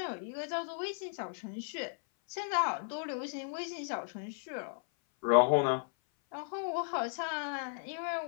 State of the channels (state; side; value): silent; right; 54 dB below the other